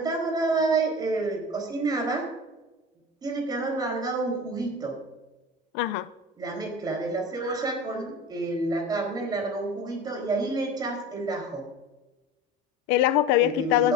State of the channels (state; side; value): normal; both; correlation 0.33